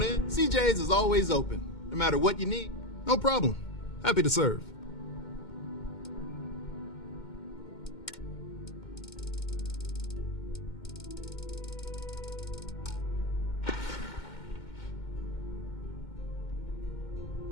in. CJ's is always open. No matter what you need, no problem. Happy to serve.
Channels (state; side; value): late; right; 2.2 ms